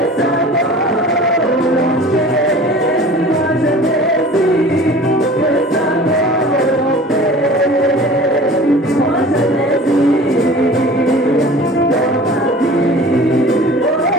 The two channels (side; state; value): both; normal; correlation 0.42